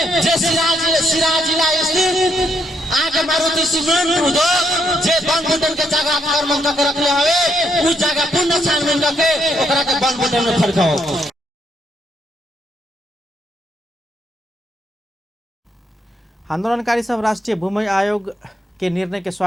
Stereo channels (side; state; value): both; normal; correlation 0.75